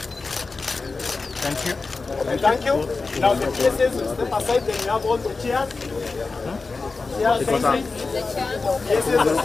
Thank you. Thank you. Now the PSS will step aside, then you have all the chairs. Chairs facing. PSS is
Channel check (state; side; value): quieter; right; 4.0 dB